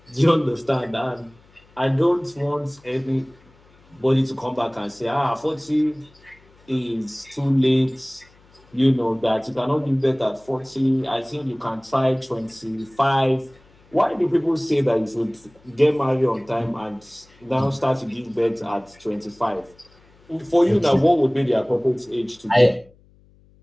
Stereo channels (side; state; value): left; noise; hum, 30 dB below the sound